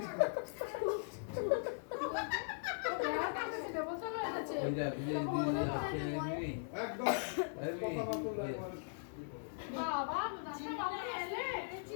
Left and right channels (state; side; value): silent; right; digital silence